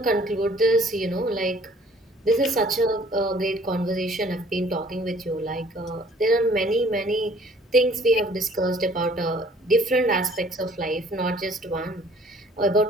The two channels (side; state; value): both; normal; correlation 0.56